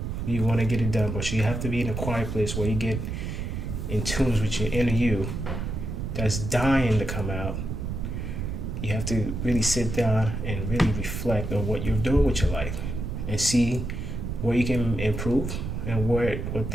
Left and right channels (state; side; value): noise; right; rumble, 4 dB below the sound